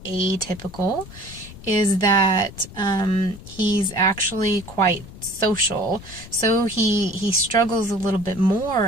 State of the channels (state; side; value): noise; left; rumble, 16 dB below the sound